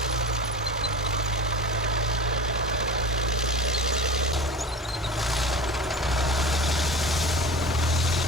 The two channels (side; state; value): both; normal; correlation 0.34